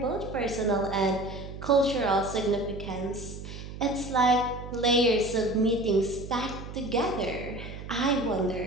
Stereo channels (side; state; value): right; noise; hum, 11 dB below the sound